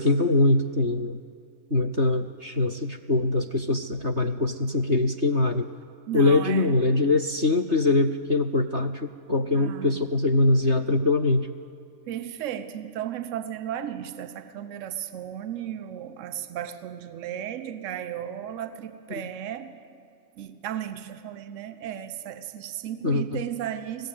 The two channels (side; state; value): left; late; 3.3 ms